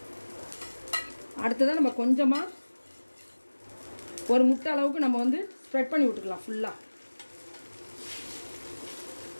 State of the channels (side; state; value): both; inverted; correlation -1.00